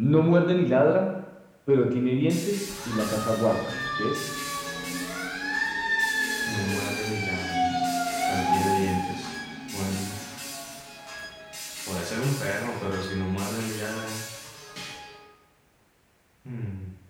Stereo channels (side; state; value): both; identical; correlation 1.00